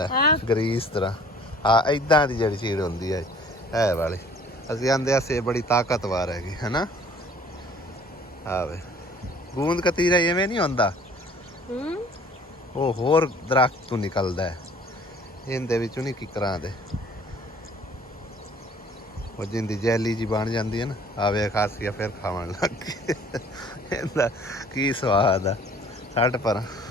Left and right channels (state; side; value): normal; both; correlation 0.53